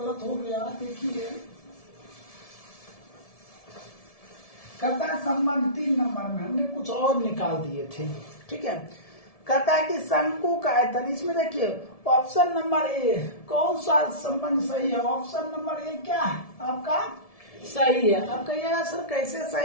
हो गया। देखिए कहता है संबंध 3 नंबर में हमने कुछ और निकाल दिए थे। ठीक है, कहता है कि शंकु का आयतन, इसमें देखिए ऑप्शन नंबर ए कौन सा संबंध सही है। ऑप्शन नंबर ए क्या है आपका सही है। अब कहिएगा सर कैसे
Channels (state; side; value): late; right; 1.7 ms